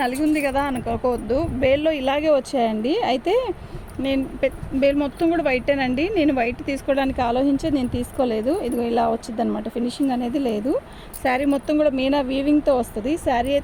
నలిగి ఉంది కదా అనుకోవద్దు, బేల్లో ఇలాగే వచ్చాయండి. అయితే నేను బేల్ మొత్తం కూడా వైటేనండి. నేను వైట్ తీసుకోవడానికి ఆలోచించి నేను తీసుకోలేదు. ఇదిగో ఇలా వచ్చింది అనమాట, ఫినిషింగ్ అనేది లేదు. శారీ మొత్తం కూడా మీనా వీవింగ్తో వస్తుంది. శారీ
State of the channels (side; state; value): both; identical; correlation 1.00